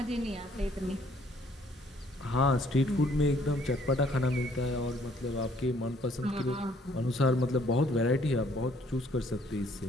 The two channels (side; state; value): both; normal; correlation 0.63